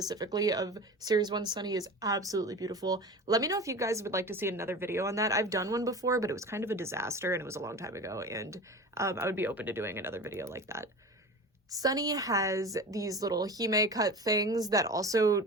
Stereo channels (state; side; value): normal; both; correlation 0.33